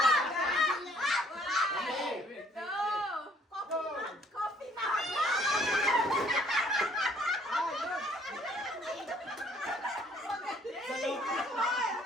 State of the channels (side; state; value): both; normal; correlation 0.62